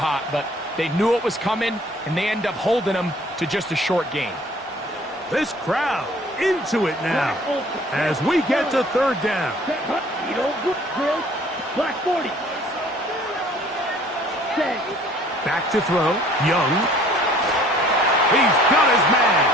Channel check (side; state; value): both; normal; correlation 0.55